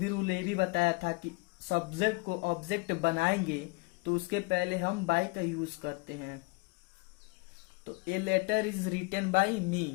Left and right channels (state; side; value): quieter; right; 27.7 dB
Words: रूल ये भी बताया था कि सब्जेक्ट को ऑब्जेक्ट बनाएंगे तो उसके पहले हम बाय का यूज करते हैं। तो a letter is written by